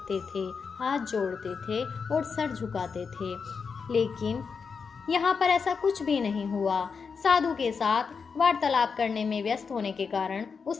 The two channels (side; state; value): right; quieter; 5.6 dB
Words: थे, हाथ जोड़ते थे और सर झुकाते थे। लेकिन यहाँ पर ऐसा कुछ भी नहीं हुआ। साधु के साथ वार्तालाप करने में व्यस्त होने के कारण